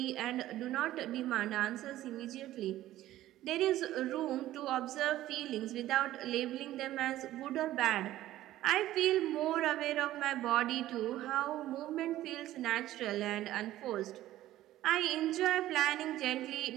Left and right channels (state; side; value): quieter; left; 14.4 dB